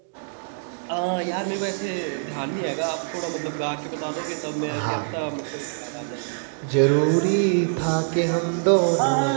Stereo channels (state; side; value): silent; left; digital silence